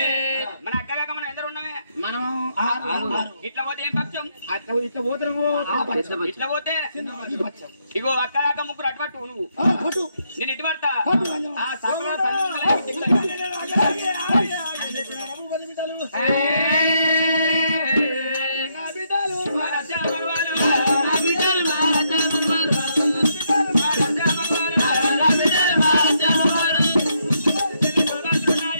మన అక్క కాక మనం ఎందరు ఉన్నామే మనం ఇట్లా పోతే ఏం పక్షం అట్లా ఇట్లా పోతున్నాము ఇట్లా పోతే ఇగో అక్క కాక ముగ్గురు అటుపట్టు నువ్వు నేను ఇటు పడతా ఆ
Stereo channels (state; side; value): inverted; both; correlation -0.76